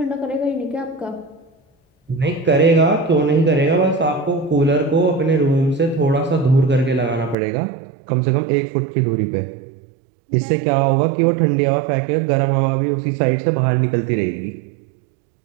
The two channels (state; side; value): drops out; left; at 7.4 s